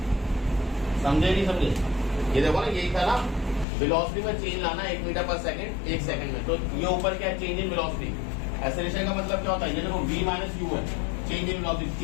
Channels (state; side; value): drops out; right; at 3.7 s